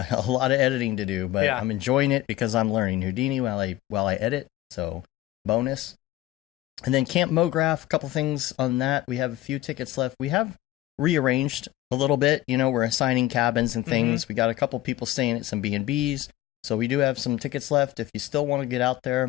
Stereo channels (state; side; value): quieter; right; 15.1 dB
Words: lot of editing to do. But I'm enjoying it because I'm learning Houdini while I edit. So bonus. And then Camp Mograph, a couple things on that. We have a few tickets left. We have rearranged a little bit. We're assigning cabins and things. We got a couple people staying at some B&Bs, so we do have some tickets left. If you still want to get out